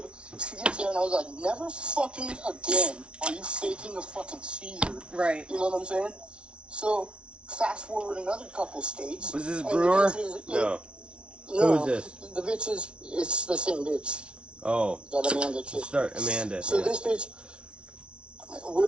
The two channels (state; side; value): late; left; 0.058 ms